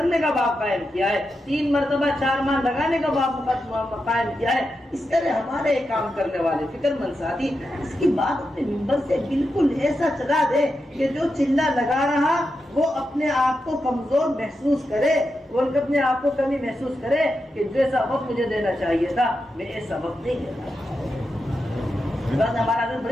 کا باب قائم کیا ہے, 3 مرتبہ 4 ماہ لگانے کا باب قائم کیا ہے. اس طرح ہمارے کام کرنے والے فکر مند ساتھی اس کی بات اپنے منبر سے بالکل ایسا چلا دے کہ جو چلہ لگا رہا وہ اپنے آپ کو کمزور محسوس کرے, وہ اپنے آپ کو کمی محسوس کرے کہ جیسا وقت مجھے دینا چاہیے تھا میں ایسا وقت نہیں دیتا. ہمارا حضرت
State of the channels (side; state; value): both; normal; correlation 0.88